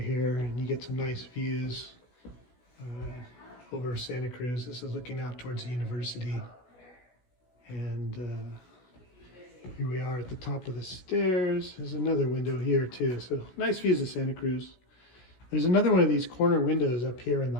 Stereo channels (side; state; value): right; late; 16 ms